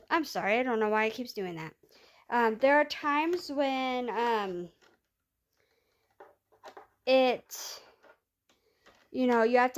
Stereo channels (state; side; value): identical; both; correlation 1.00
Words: I'm sorry, I don't know why it keeps doing that. There are times when you have